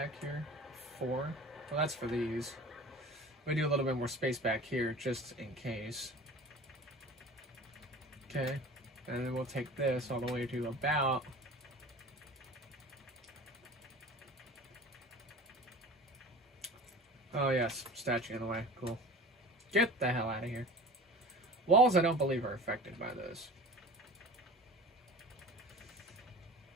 here? 4. Well, that's for these. We do a little bit more space back here just in case. Okay, and then we'll take this all the way to about... Oh yes, statue in the way. Cool. Get the hell out of here. Walls I don't believe are affected by this.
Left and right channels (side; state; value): both; normal; correlation 0.39